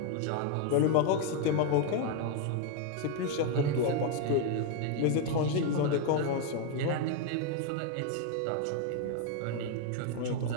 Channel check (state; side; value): different; both; correlation 0.01